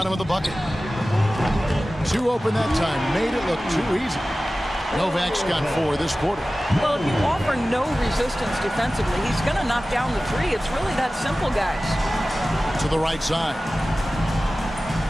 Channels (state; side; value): normal; both; correlation 0.96